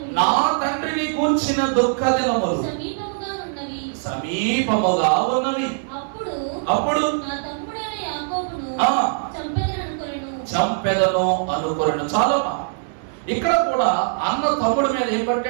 నా తండ్రిని గూర్చిన దుఃఖ దినములు సమీపముగా ఉన్నవి. అప్పుడు చంపెదను అనుకొనెను. చాలా ఇక్కడ కూడా అన్న తమ్ముడి మీద ఏం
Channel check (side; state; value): left; silent; digital silence